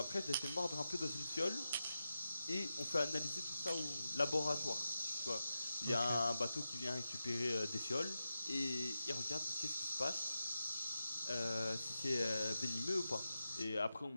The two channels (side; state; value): both; inverted; correlation -0.91